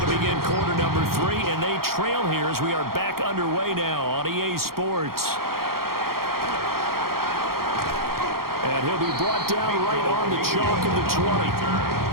to begin quarter number 3, and they trail here as we are back underway now on EA Sports. And he'll be brought down right on the chalk of the 20.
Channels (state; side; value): late; left; 0.93 ms